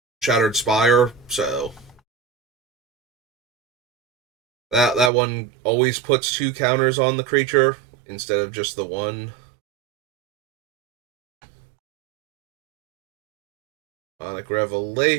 Shattered Spire, so that one always puts 2 counters on the creature instead of just the one. Sonic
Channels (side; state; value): left; drops out; at 5.1 s